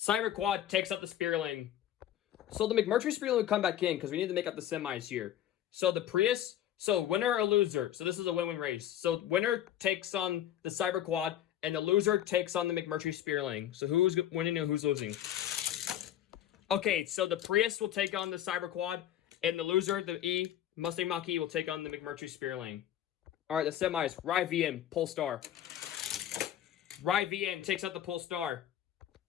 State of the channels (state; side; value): quieter; right; 11.4 dB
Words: Quad takes out the Spearling. So the McMurtry Spearling would come back in because we need to make up the semis here. So the Prius, so winner or loser. So this is a win-win race. So winner takes on the Cyber Quad and the loser takes on the McMurtry Spearling. So who's winning and who's losing? Okay, so the Prius will take on the Cyber Quad and the loser, the Mustang Mach-E, will take on the McMurtry Spearling. All right, the semis. Rivian, Polestar. Rivian takes out the Polestar.